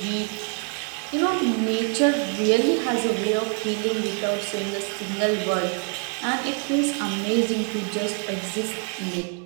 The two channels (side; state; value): left; quieter; 36.4 dB